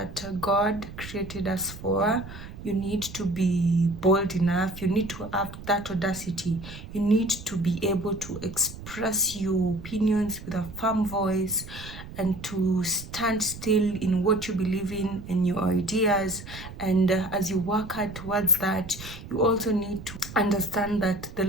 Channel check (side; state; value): right; noise; rumble, 13 dB below the sound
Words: God created us for. You need to be bold enough. You need to have that audacity. You need to be able to express your opinions with a firm voice and to stand still in what you believe in your ideas. And as you work hard towards that, you also need to understand that the